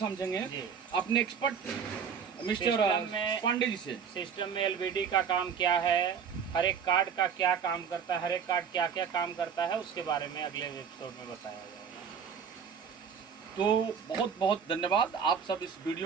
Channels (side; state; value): left; quieter; 7.0 dB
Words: अपने एक्सपर्ट मिस्टर पांडे जी से। सिस्टम में एलवीडी का काम क्या है, हर एक कार्ड का क्या काम करता है, हर एक कार्ड क्या क्या काम करता है, उसके बारे में अगले एपिसोड में बताया जाएगा। तो बहुत बहुत धन्यवाद। आप सब इस